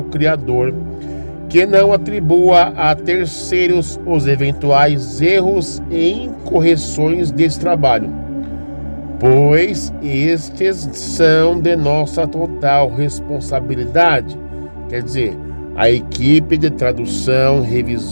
Criador que não atribua a terceiros os eventuais erros e incorreções desse trabalho, pois estes são de nossa total responsabilidade. Quer dizer, a equipe de tradução,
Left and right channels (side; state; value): both; inverted; correlation -1.00